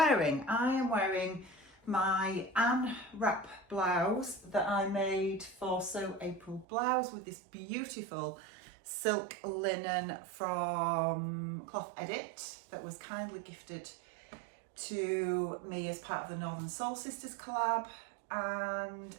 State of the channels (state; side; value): drops out; left; at 6.7 s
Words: I am wearing my Anne wrap blouse that I made for Sew April blouse with this beautiful silk linen from Cloth Edit that was kindly gifted to me as part of the Northern Soul Sisters collab, and